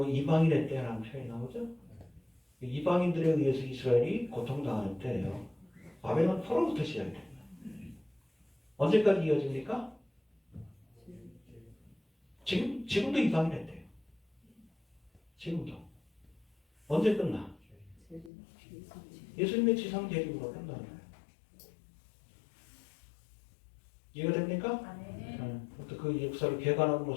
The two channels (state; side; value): drops out; right; at 18.3 s